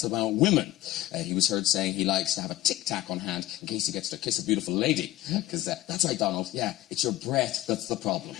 about women. He was heard saying he likes to have a tic-tac on hand in case he gets to kiss a beautiful lady. Because that's right, Donald. Yeah, it's your breath that's the problem.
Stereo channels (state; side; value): quieter; right; 16.0 dB